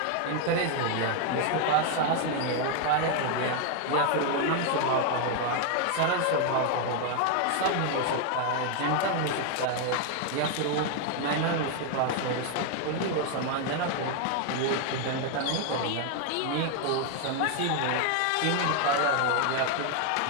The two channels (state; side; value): different; both; correlation 0.00